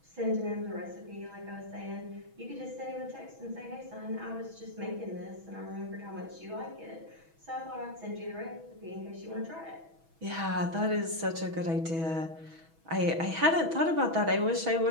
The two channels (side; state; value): left; late; 6.2 ms